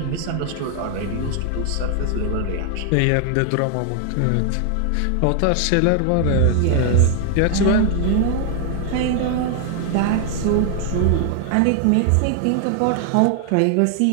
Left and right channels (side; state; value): both; different; correlation 0.00